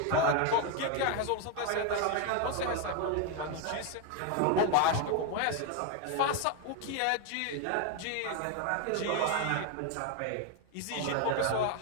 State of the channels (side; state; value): both; different; correlation 0.01